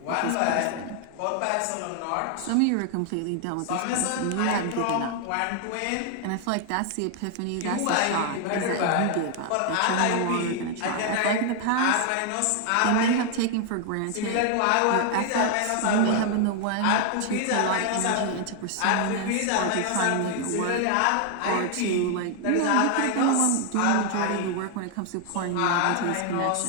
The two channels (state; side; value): different; both; correlation 0.00